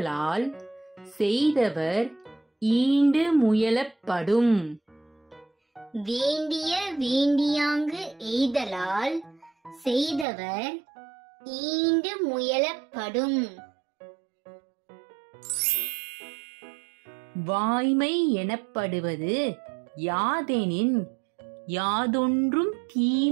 செய்தவர் ஈண்டு முயலப்படும். வேண்டிய வேண்டியாங்கு எய்தலால் செய்தவர் ஈண்டு முயலப்படும். வாய்மை எனப்படுவது யாதெனின் யாதொன்றும்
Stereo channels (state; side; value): drops out; left; at 10.2 s